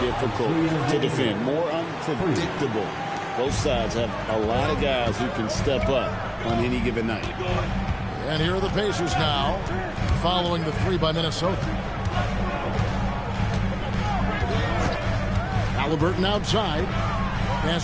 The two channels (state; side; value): identical; both; correlation 1.00